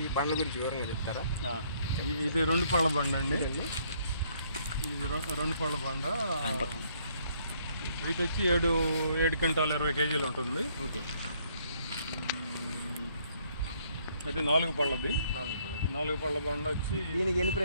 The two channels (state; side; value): inverted; both; correlation -0.67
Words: ఈ బండ్ల గురించి వివరంగా చెప్తారా? ఇది 2 పళ్ళ బండ అండి. ఇది 2 పళ్ళ బండ. వెయిట్ వచ్చి 7 క్వింటాలు 20 కేజీలు ఉంటుంది. ఓకే. అయితే 4 పళ్ళది. 4 పళ్ళ బండ వచ్చి దీనికి ఎన్ని